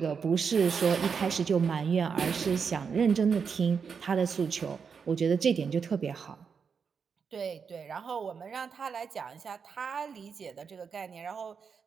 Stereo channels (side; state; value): left; quieter; 6.1 dB